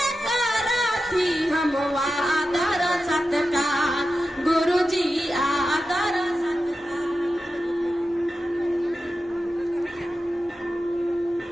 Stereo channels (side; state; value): both; normal; correlation 0.91